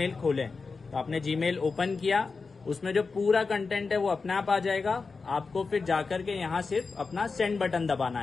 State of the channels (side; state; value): right; quieter; 4.5 dB